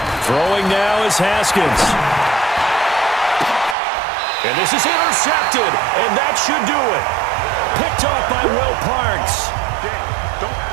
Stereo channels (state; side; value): drops out; left; at 3.8 s